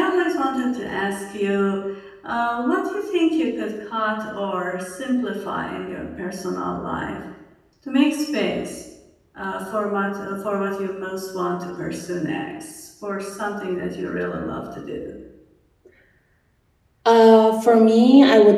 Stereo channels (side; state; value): both; identical; correlation 1.00